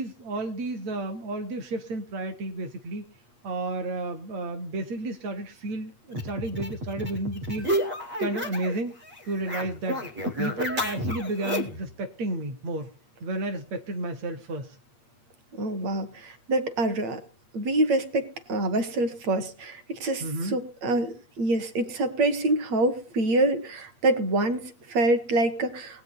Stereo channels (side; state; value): left; late; 8.4 ms